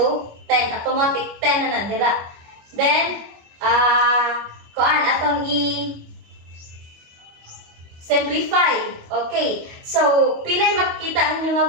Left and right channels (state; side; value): late; left; 25 ms